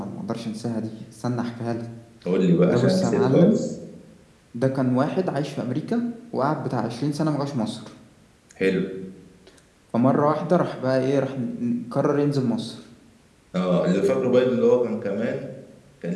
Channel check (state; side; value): identical; both; correlation 1.00